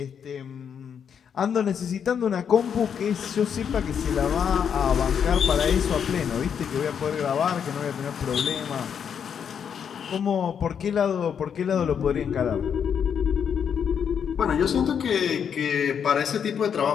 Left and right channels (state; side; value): quieter; right; 7.7 dB